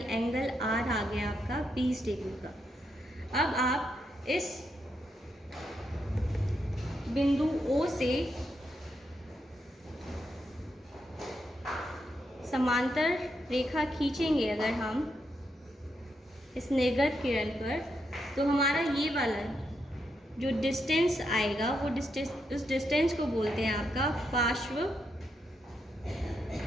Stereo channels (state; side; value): normal; both; correlation 0.81